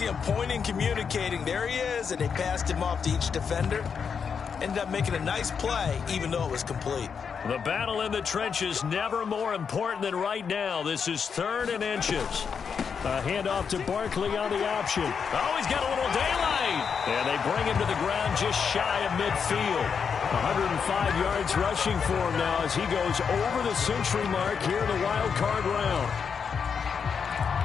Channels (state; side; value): quieter; right; 6.4 dB